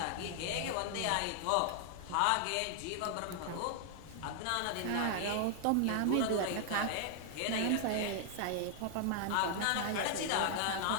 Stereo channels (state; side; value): different; both; correlation 0.00